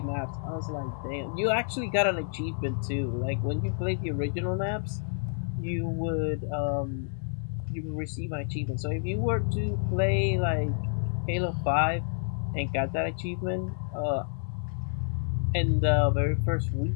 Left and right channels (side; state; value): right; silent; digital silence